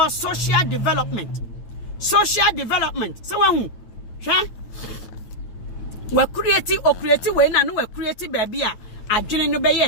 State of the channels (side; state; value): right; late; 9.5 ms